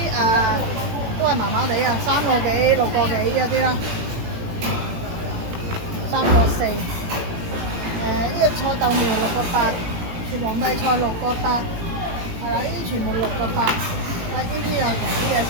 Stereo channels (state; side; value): late; left; 17 ms